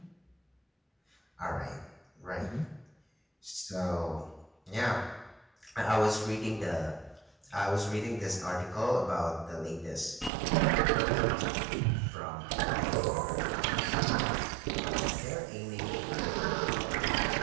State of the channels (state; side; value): drops out; left; at 10.3 s